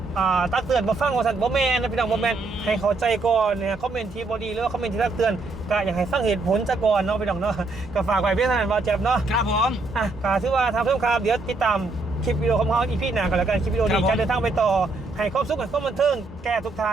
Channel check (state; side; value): quieter; left; 3.4 dB